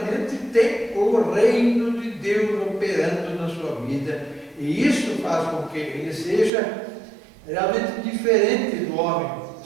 tem o reino de Deus operando na sua vida, e isso faz com que ele seja realmente diferente do homem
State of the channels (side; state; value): left; drops out; at 6.5 s